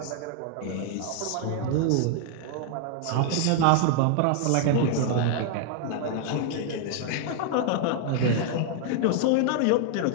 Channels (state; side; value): different; both; correlation 0.00